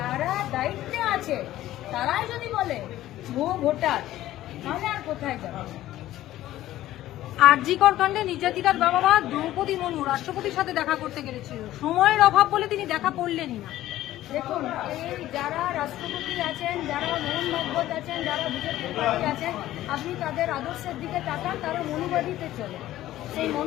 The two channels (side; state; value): right; quieter; 14.4 dB